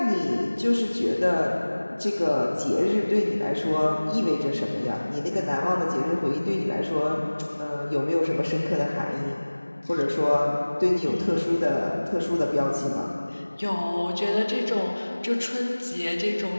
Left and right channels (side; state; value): both; inverted; correlation -1.00